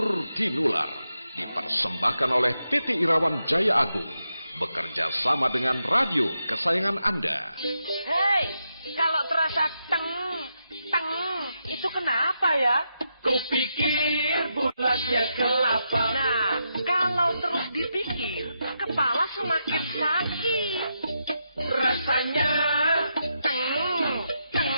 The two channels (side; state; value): both; inverted; correlation -0.84